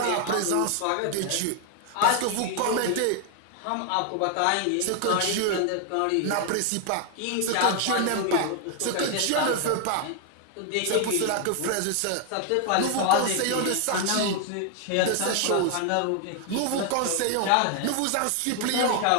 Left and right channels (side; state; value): both; different; correlation 0.00